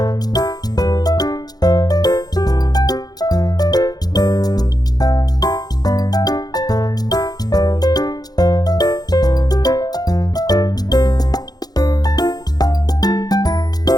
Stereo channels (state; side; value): late; right; 0.19 ms